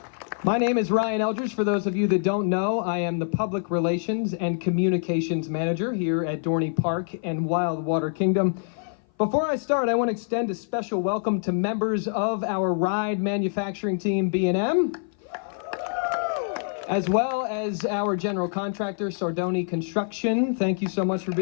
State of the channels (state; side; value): silent; right; 57 dB below the other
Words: My name is Ryan Eldridge. For those of you that don't know, I am the Public Relations and Communications Manager here at Dorney Park and Wildwater Kingdom. Before I start, I want to extend a special welcome to members of our ride manufacturing team, B&M, as well as our general contractor, Dorney Construction. Thank you so much for